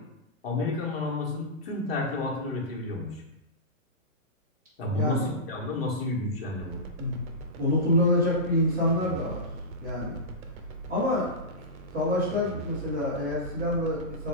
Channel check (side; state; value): both; normal; correlation -0.15